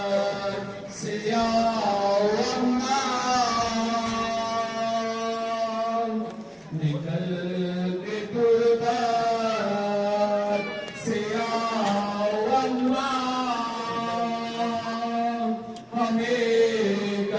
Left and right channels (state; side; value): identical; both; correlation 1.00